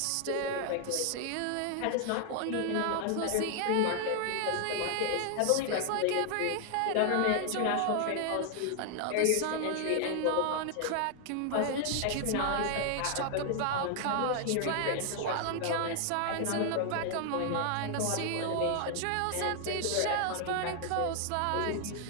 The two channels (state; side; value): different; both; correlation 0.00